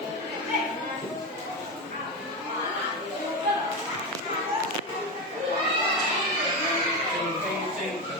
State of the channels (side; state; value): both; normal; correlation 0.17